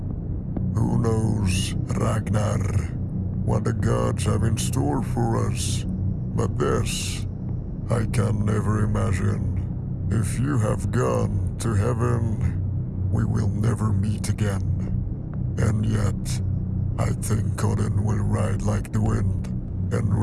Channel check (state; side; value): identical; both; correlation 1.00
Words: Who knows, Ragnar, what the gods have in store for us? But this, I can never imagine. If you have gone to heaven, we will never meet again. And yet, I think Odin will ride like the wind and